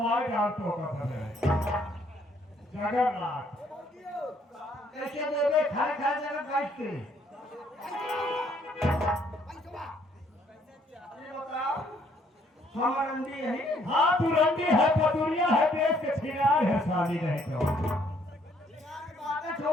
डाल तो का था जगन्नाथ कैसे देवे खाए खाए जगह काटते ये बताओ हम रंडी है हाँ तू रंडी है पटुरिया है देश के छिनार है शादी नहीं तो बातें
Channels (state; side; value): normal; both; correlation 0.66